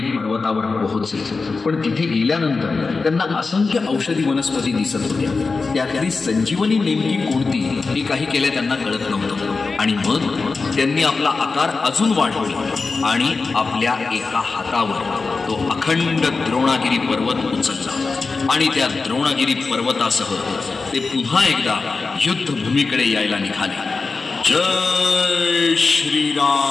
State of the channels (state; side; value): quieter; right; 4.2 dB